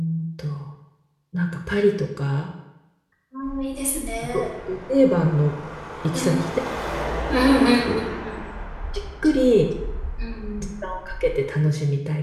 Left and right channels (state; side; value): identical; both; correlation 1.00